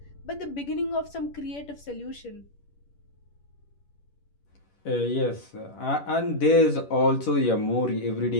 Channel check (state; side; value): late; right; 10 ms